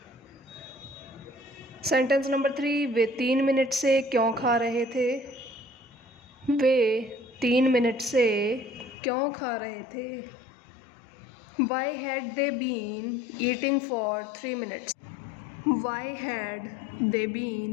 Sentence number 3, way 3 minute से क्यों खा रहे थे? वे 3 मिनट से क्यों खा रहे थे? Why had they been eating for 3 minutes? Why had they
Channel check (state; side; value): drops out; right; at 9.0 s